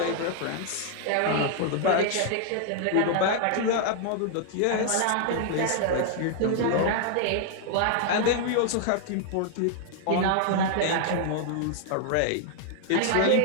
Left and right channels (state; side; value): different; both; correlation 0.00